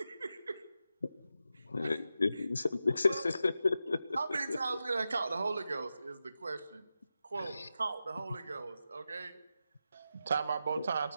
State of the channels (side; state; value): both; inverted; correlation -0.90